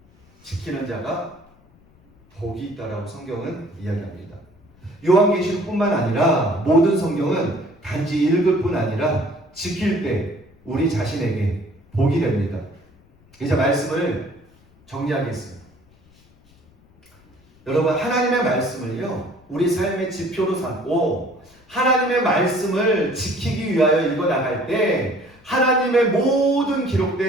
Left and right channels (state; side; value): noise; left; rumble, 29 dB below the sound